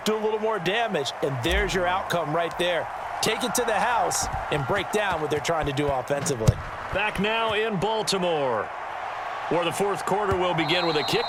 do a little more damage, and there's your outcome right there. Take it to the house and break down what they're trying to do offensively. Back now in Baltimore, where the 4th quarter will begin with a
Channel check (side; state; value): both; identical; correlation 1.00